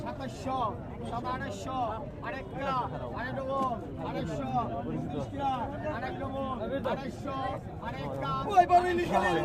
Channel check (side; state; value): both; identical; correlation 1.00